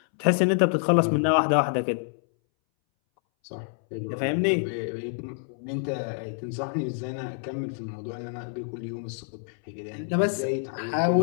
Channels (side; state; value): right; silent; 60 dB below the other